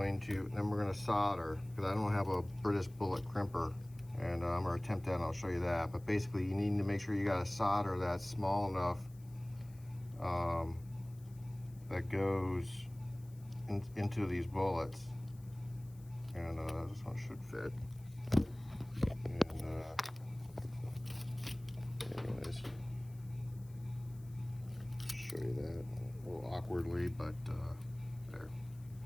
to solder, because I don't have a British bullet crimper, and I'm going to attempt that and I'll show you that. But basically you need to make sure you got a solder that's small enough that goes into these bullets. And this one should fit. And anyways, show you that a little awkwardly, but there.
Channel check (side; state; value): left; noise; hiss, 27 dB below the sound